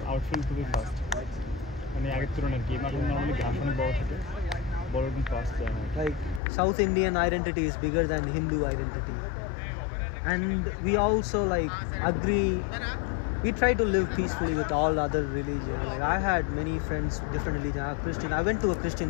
Outfield খুবই fast মানে আগের তুলনায় game এখন normally graph অনেক বড় থাকে বড় এবং ফাস্ট যায় Like South Indian identity is bigger than Hindu identity, and we also like agree. We try to live peacefully with all other religions. Like I had many friends, different religion. I Christian. I went to a Christian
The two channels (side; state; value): right; drops out; at 6.4 s